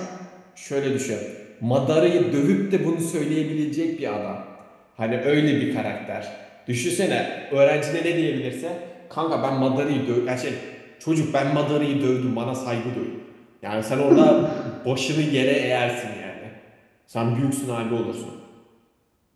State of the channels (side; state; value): both; identical; correlation 1.00